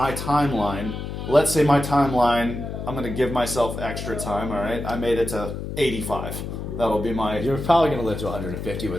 timeline, let's say my timeline, I'm going to give myself extra time. All right, I made it to 85. That'll be my... You're probably going to live to 150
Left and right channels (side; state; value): left; noise; hum, 6 dB below the sound